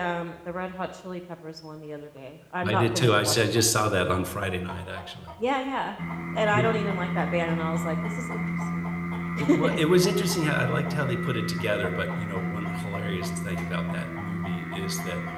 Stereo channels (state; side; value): identical; both; correlation 1.00